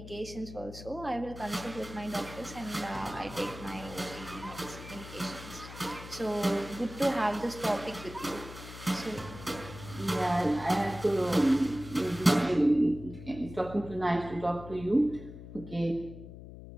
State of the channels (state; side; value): noise; left; hum, 13 dB below the sound